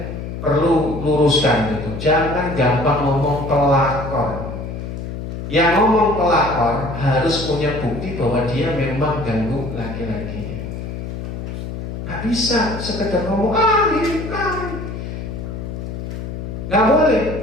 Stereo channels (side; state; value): left; noise; hum, 7 dB below the sound